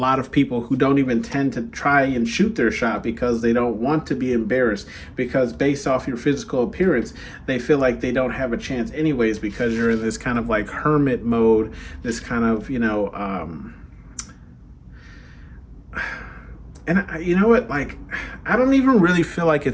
of people who don't even tend to try and shoot their shot because they don't want to be embarrassed, because based off your physical appearance, they feel like they don't have a chance anyways because you're in this kind of like hermit mode, this kind of, and you know what? Like, I don't even really feel like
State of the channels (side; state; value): both; identical; correlation 1.00